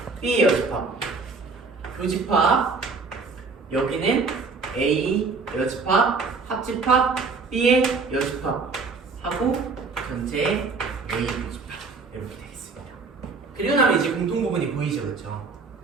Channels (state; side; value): quieter; left; 4.3 dB